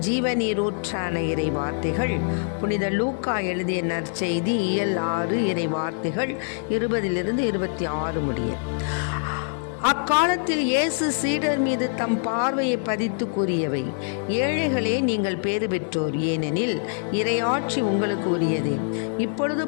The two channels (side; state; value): right; silent; digital silence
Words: ஜீவநீரூற்றான இறை வார்த்தைகள் புனித லூக்கா எழுதிய நற்செய்தி இயல் 6 இறை வார்த்தைகள் 20 26 முடிய. அக்காலத்தில் இயேசு சீடர் மீது தம் பார்வையை பதித்து கூறியவை: ஏழைகளே, நீங்கள் பேறு பெற்றோர், ஏனெனில் இறையாட்சி உங்களுக்கு உரியதே. இப்பொழுது